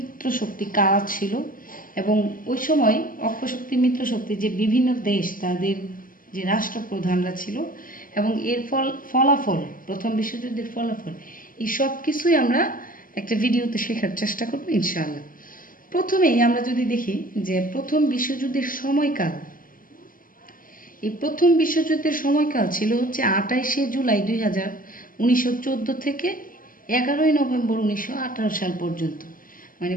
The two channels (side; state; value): right; late; 0.40 ms